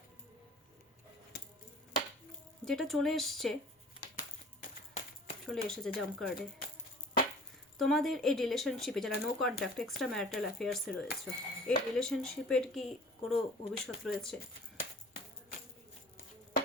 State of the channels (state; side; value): normal; both; correlation 0.46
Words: যেটা চলে এসেছে জাম্প কার্ডে, তোমাদের এই রিলেশনশিপে যারা নো কন্ট্যাক্ট এক্সট্রা ম্যারিটাল অ্যাফেয়ার্সে রয়েছে, এই রিলেশনশিপের কি কোনো ভবিষ্যৎ রয়েছে?